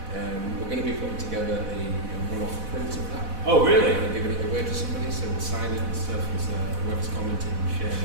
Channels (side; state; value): left; late; 4.1 ms